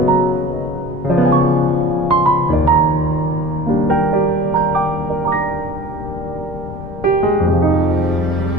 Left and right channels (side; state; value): left; noise; rumble, 13 dB below the sound